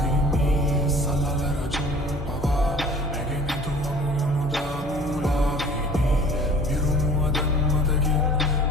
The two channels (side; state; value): both; normal; correlation 0.47